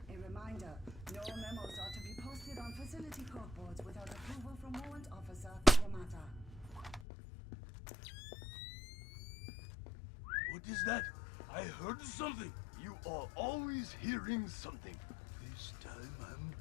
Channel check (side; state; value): right; drops out; at 7.1 s